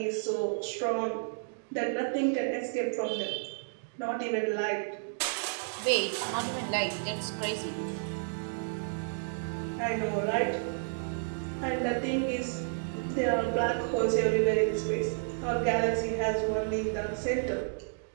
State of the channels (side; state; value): left; silent; digital silence